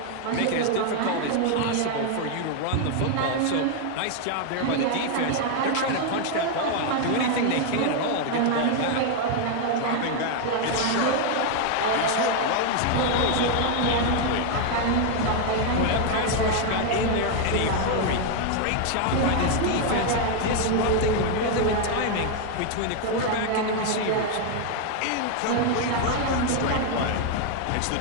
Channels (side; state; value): both; different; correlation 0.01